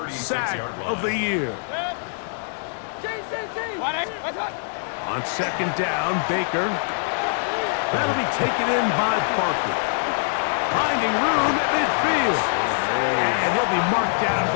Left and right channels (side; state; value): right; silent; digital silence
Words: sack of the year. What's that? On 2nd down, Baker. That'll be taken in by Parker. Finding room at midfield. And he'll be marked down at